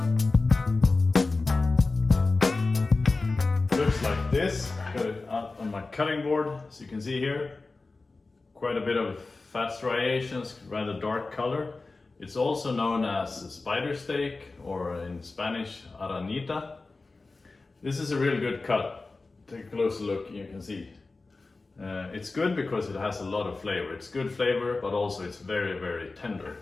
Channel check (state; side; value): quieter; right; 3.6 dB